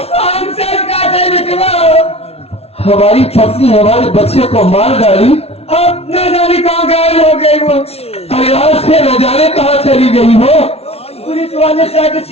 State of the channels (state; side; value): late; right; 0.30 ms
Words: हमारी पत्नी हमारे बच्चे को मार डाली, अब न जाने कहाँ गायब हो गई वो। अरे आज से न जाने कहाँ चली गई हो। पुलिस वाले से आके